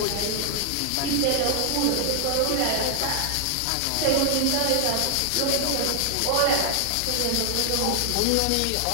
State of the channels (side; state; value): both; different; correlation 0.00